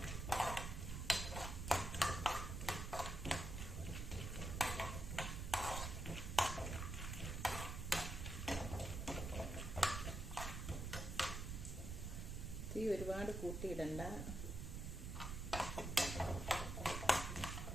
തീ ഒരുപാട് കൂട്ടിയിടണ്ട.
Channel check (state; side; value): noise; right; rumble, 4 dB below the sound